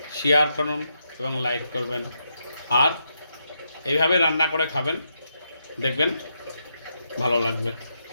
শেয়ার করুন এবং লাইক করবেন। আর এইভাবে রান্না করে খাবেন, দেখবেন ভালো লাগবে।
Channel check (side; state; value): both; inverted; correlation -0.82